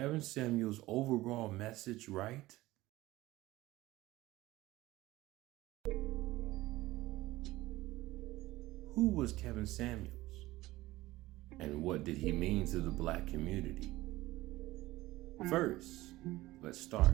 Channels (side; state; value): left; quieter; 17.9 dB